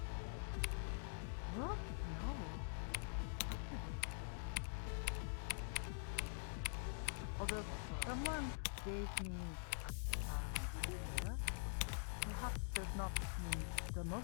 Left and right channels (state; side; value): silent; right; digital silence